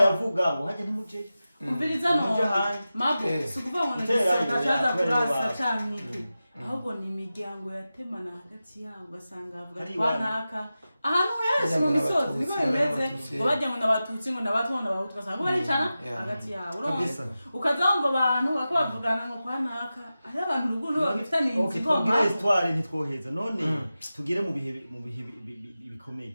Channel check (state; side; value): inverted; both; correlation -0.94